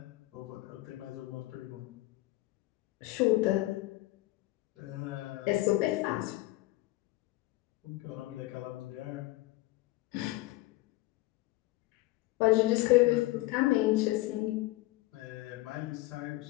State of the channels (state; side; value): quieter; right; 19.2 dB